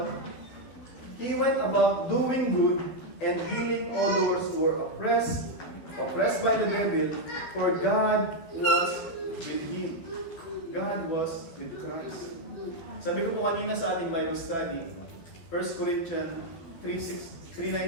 He went about doing good and healing all those who were oppressed by the devil, for God was with him. God was with Christ. Sabi ko po kanina sa ating Bible study, 1 Corinthians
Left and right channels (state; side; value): late; right; 12 ms